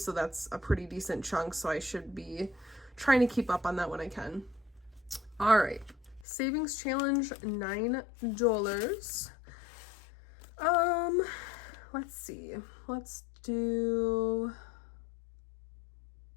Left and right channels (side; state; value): right; drops out; at 6.2 s